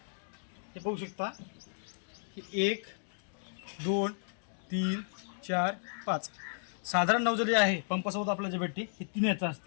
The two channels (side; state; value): right; silent; digital silence